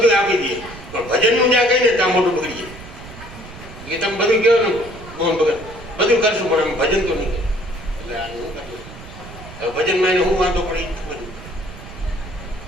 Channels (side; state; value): right; noise; rumble, 16 dB below the sound